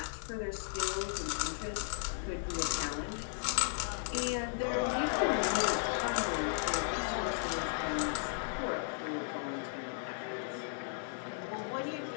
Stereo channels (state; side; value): silent; right; 54 dB below the other